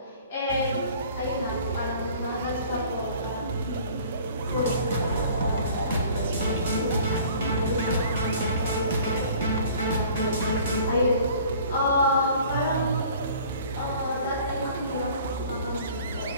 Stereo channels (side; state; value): both; inverted; correlation -0.50